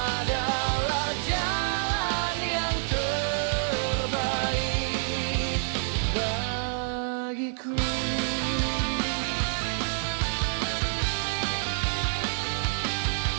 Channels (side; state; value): left; silent; 60 dB below the other